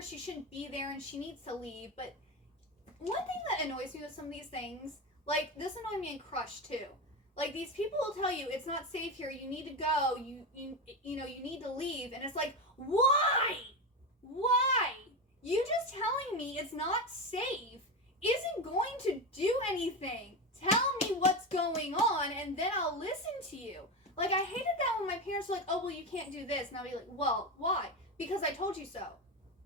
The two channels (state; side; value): normal; both; correlation 0.17